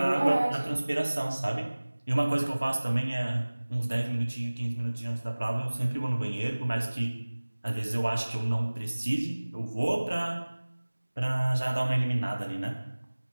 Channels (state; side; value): inverted; both; correlation -1.00